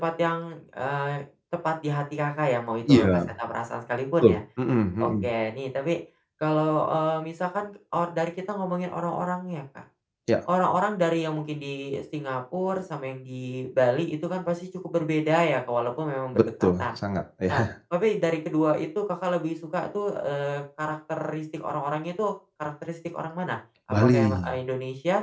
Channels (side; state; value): both; identical; correlation 1.00